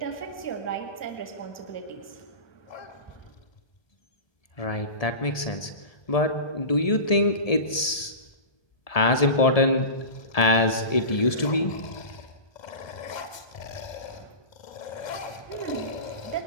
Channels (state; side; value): late; right; 1.7 ms